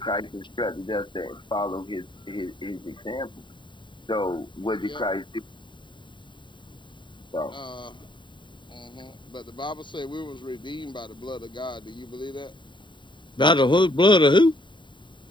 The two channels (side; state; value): right; late; 0.23 ms